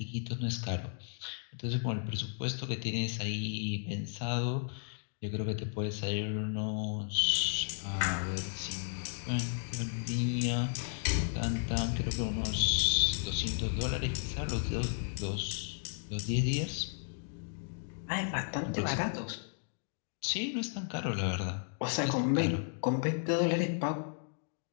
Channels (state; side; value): silent; right; digital silence